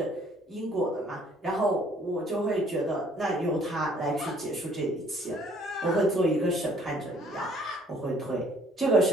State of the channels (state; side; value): normal; both; correlation 0.60